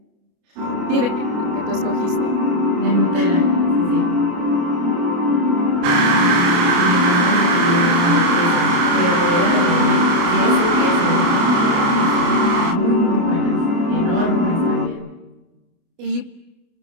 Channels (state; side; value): late; left; 29 ms